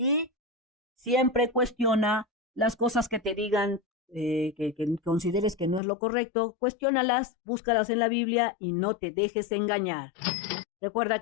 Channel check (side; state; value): right; drops out; at 5.8 s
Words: siempre cuestiona las cosas que te digan, que consideres que no es lo correcto, cuestiónalas, búscalas en la Biblia y no te dejes engañar. Recuerda